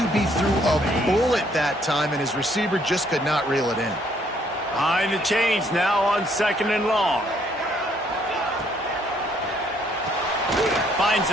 threw a bullet that time, and his receiver just could not reel it in. Behind the chains now on 2nd and long. Finds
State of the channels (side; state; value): both; normal; correlation 0.67